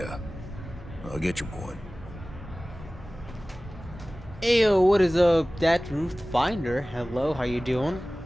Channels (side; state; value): both; normal; correlation 0.98